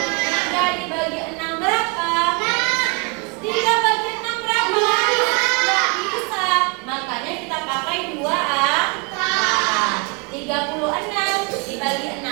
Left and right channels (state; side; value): quieter; left; 33.0 dB